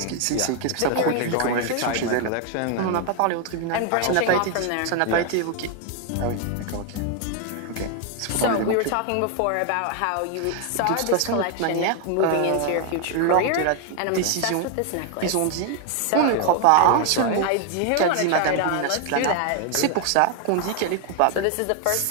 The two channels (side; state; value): both; different; correlation 0.01